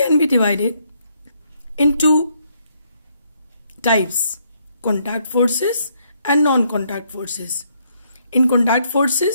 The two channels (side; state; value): both; inverted; correlation -0.72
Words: be divided into types: contact forces and non-contact forces. In contact